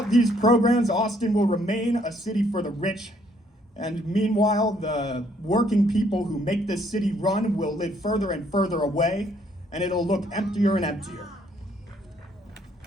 these programs, Austin will remain a city for the rich, and meanwhile, the working people who make this city run will live further and further away, and it'll look emptier and emptier.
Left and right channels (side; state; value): both; normal; correlation 0.67